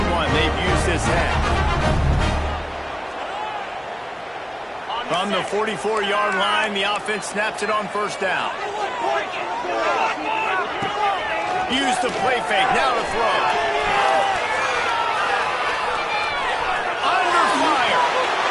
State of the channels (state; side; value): identical; both; correlation 1.00